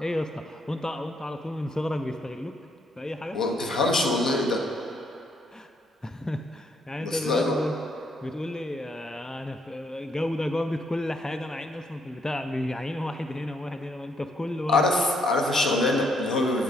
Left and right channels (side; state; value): both; normal; correlation 0.72